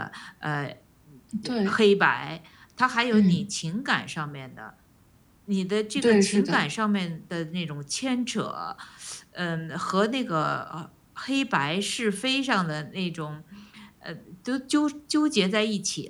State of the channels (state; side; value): identical; both; correlation 1.00